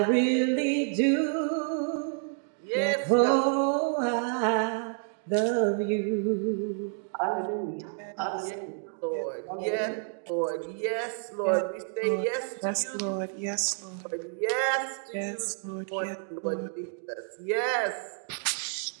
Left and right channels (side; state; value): left; silent; 58 dB below the other